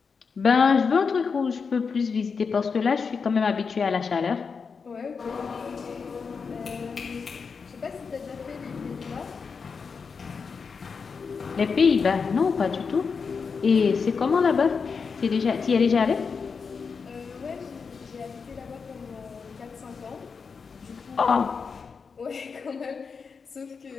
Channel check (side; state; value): right; quieter; 5.4 dB